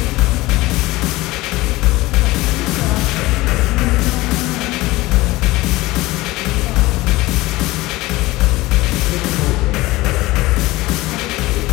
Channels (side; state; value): right; quieter; 19.5 dB